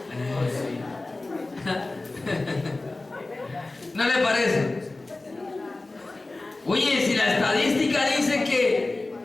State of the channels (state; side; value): quieter; right; 3.1 dB